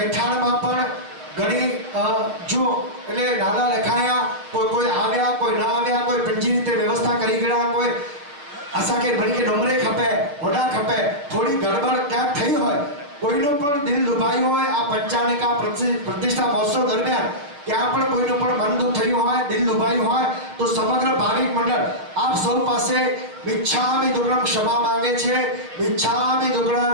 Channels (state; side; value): late; left; 6.9 ms